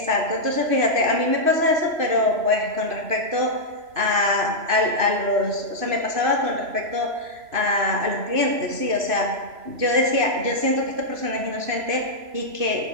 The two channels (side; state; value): left; late; 3.0 ms